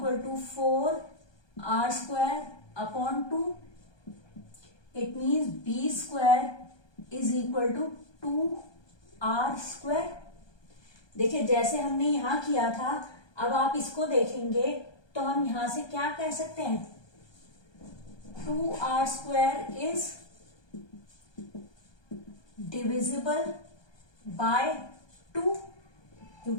to 4r square upon 2। It means b square is equal to 2r square. देखिए, जैसे हमने यहां किया था, अब आप इसको देखेंगे तो हम यहां से क्या कह सकते हैं, 2r square is divisible by 2,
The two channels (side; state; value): right; late; 1.2 ms